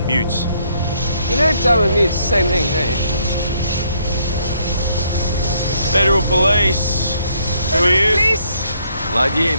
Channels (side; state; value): both; inverted; correlation -0.70